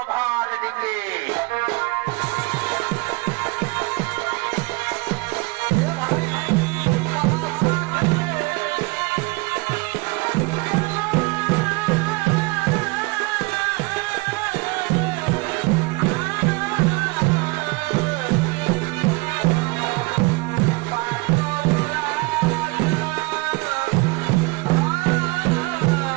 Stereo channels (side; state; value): left; quieter; 25.2 dB